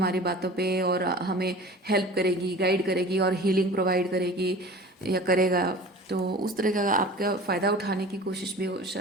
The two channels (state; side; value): normal; both; correlation 0.39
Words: बातों पे और हमें हेल्प करेगी, गाइड करेगी और हीलिंग प्रोवाइड करेगी या करेगा। तो उस तरह का आपका फ़ायदा उठाने की कोशिश भी हो